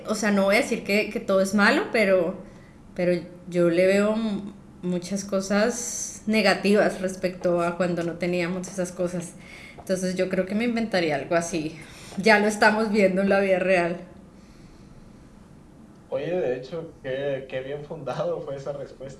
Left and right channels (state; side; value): identical; both; correlation 1.00